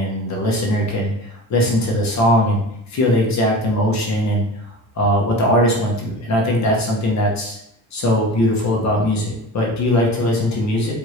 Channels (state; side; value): normal; both; correlation 0.35